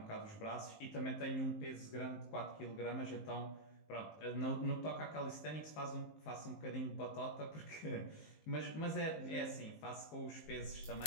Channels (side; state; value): right; late; 19 ms